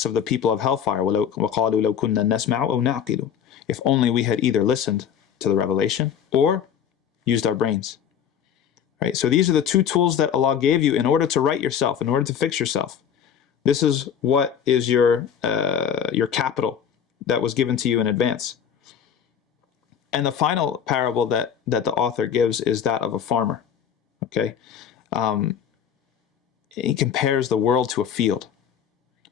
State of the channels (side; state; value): right; quieter; 8.4 dB